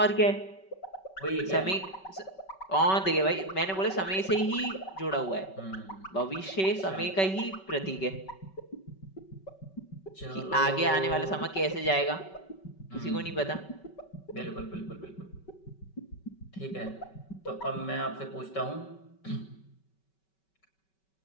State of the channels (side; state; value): right; late; 5.3 ms